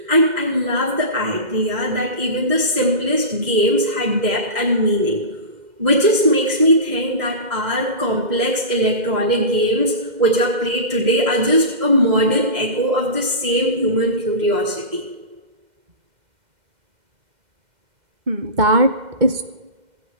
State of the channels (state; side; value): late; left; 2.1 ms